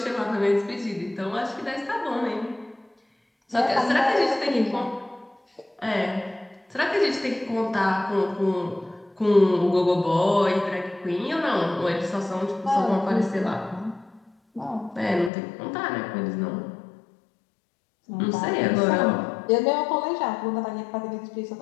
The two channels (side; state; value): right; drops out; at 15.3 s